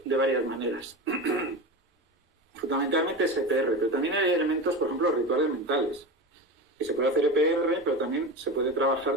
de varias maneras. Fundamentalmente es EPR, pero también hay elementos, por ejemplo, rituales mentales, que se puede hacer EPR, pero también se puede trabajar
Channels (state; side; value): normal; both; correlation 0.26